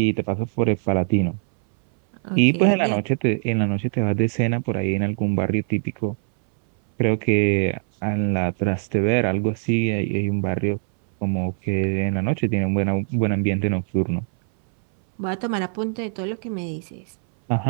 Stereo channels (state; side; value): silent; left; 62 dB below the other